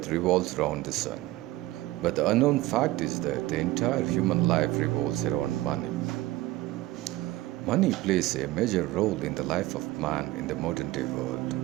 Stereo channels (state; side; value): quieter; left; 17.8 dB